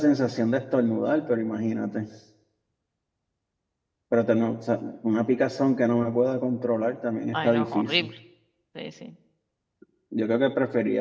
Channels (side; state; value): both; identical; correlation 1.00